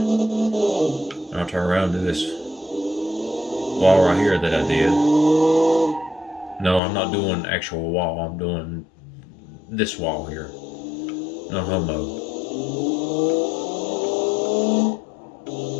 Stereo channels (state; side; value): drops out; right; at 6.8 s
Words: turn around and do this wall right here that I did. No, I'm not doing actual wall. I'm doing this wall here. No homo. Oh,